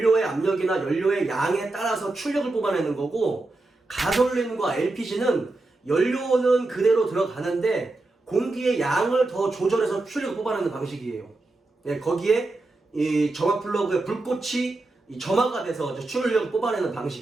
압력이나 연료의 양에 따라서 출력을 뽑아내는 거고, 가솔린과 LPG는 연료는 그대로 들어가는데 공기의 양을 더 조절해서 출력을 뽑아내는 방식이에요. 예, 거기에 이 점화 플러그의 불꽃이 이 점화가 돼서 출력을 뽑아내는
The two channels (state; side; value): quieter; left; 3.1 dB